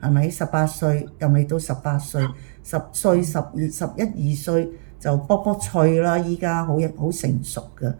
係咪？18歲又未到18歲，10歲、11、12歲。就卜卜脆啦，依家好成熟嘅，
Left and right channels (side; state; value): left; silent; 59 dB below the other